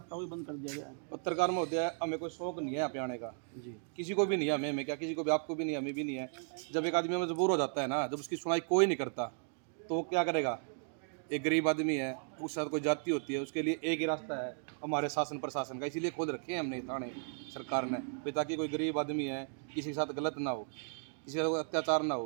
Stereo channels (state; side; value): silent; left; 54 dB below the other